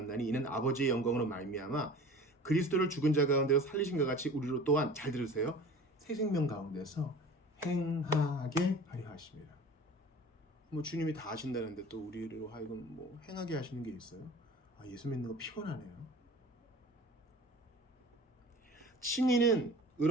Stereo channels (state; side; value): normal; both; correlation 0.41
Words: 이는 아버지의 영광으로 말미암아 그리스도를 죽은 자 가운데서 살리신 것 같이 우리로 또한 잘 들으세요. 새 생명 가운데서 행하게 하려 하십니다. 뭐 주님이 다 하신다는데 또 우리로 하여금 뭐 행하게 하시는 게 있어요? 아, 예수 믿는 거 피곤하네요. 칭의는